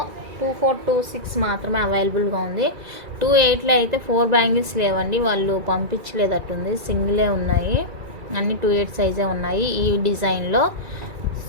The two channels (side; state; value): left; late; 2.3 ms